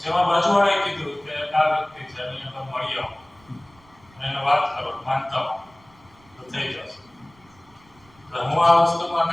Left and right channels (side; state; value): right; noise; rumble, 29 dB below the sound